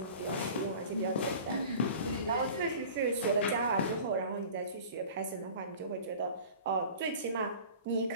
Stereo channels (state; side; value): inverted; both; correlation -0.41